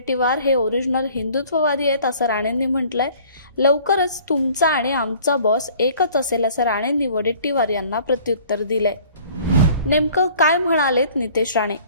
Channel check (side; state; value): both; inverted; correlation -0.52